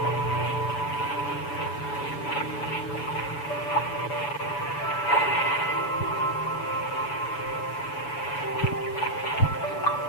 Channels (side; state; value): right; late; 7.0 ms